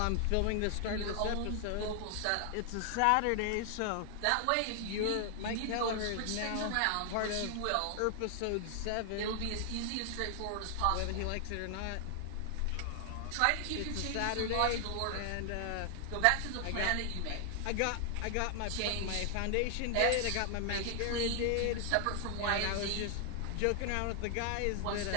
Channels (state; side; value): different; both; correlation 0.00